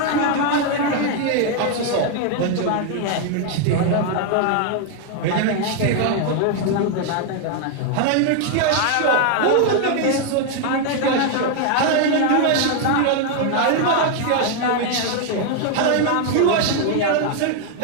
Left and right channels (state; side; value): different; both; correlation 0.00